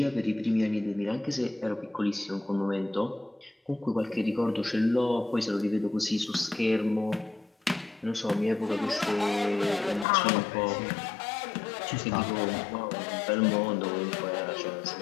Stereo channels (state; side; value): drops out; right; at 10.1 s